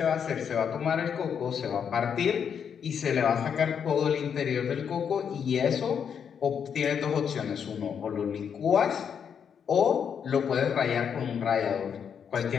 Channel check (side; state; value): right; quieter; 7.5 dB